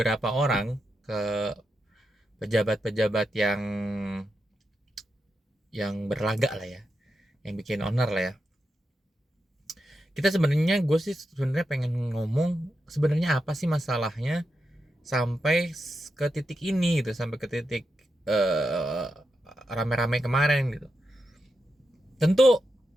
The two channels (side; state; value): both; normal; correlation 0.87